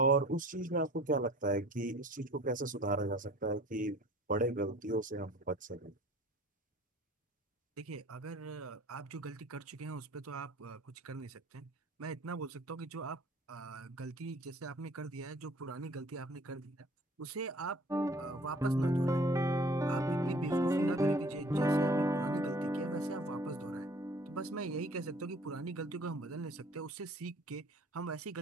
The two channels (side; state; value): both; normal; correlation 0.50